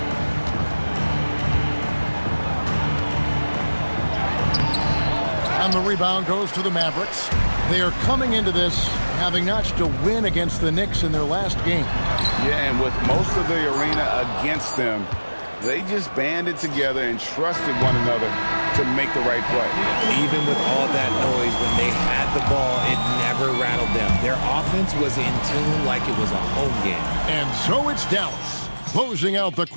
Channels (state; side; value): inverted; both; correlation -1.00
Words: And the rebound goes to the Mavericks. They are coming into this having notched a win against the Knicks in their last game. Yeah, and with most of the arena against them, they just banded together and trusted one another to make the right play. Even with all that noise, when they had the ball, it never rattled them. Their offense was in tune like it was a home game. And so it's Dallas, closing out the